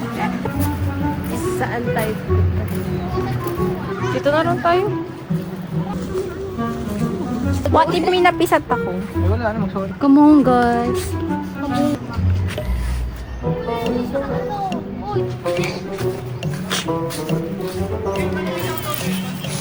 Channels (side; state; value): both; identical; correlation 1.00